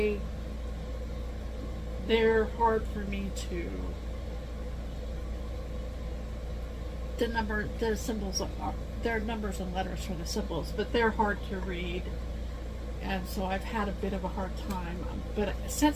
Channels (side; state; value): both; identical; correlation 1.00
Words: They're hard for me to, the symbols are, they're numbers and letters for the symbols, but they're hard to read, and so I've had a bit of a hard time. But